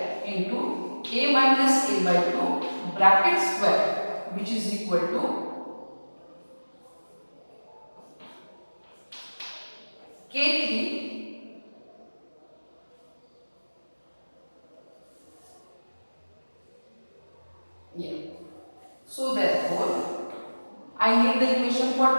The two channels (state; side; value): inverted; both; correlation -1.00